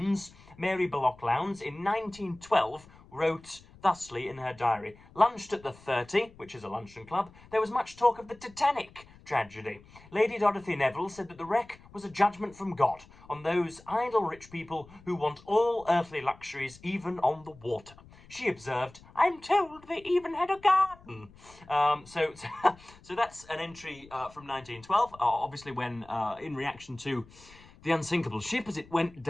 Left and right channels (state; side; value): noise; left; rumble, 23 dB below the sound